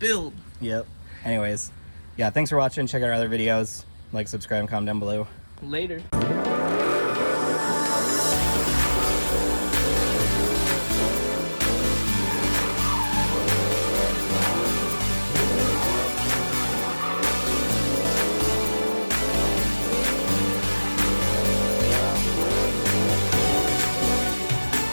Build. Yep. Anyways, yeah, thanks for watching. Check out our other videos. Like, subscribe, and comment down below. Later.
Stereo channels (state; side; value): inverted; both; correlation -1.00